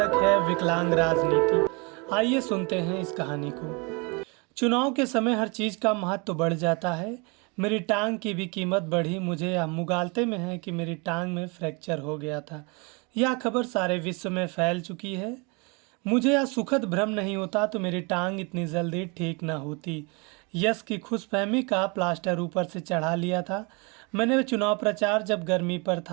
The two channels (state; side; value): quieter; left; 30.5 dB